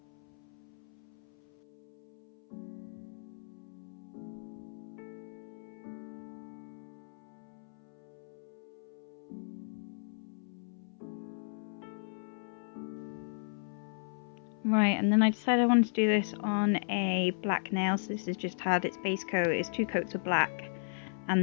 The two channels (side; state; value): right; silent; 54 dB below the other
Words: Right, and then I decided I wanted to do this on a black nail. So this has just had its base coat, it's 2 coats of black